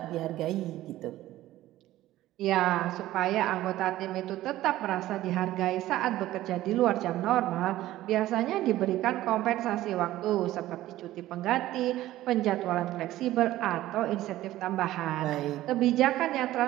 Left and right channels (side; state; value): left; quieter; 15.1 dB